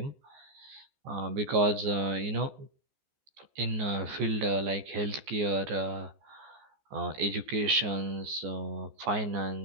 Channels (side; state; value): left; late; 14 ms